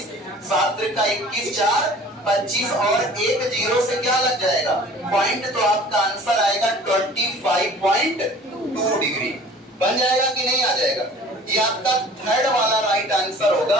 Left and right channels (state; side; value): normal; both; correlation 0.47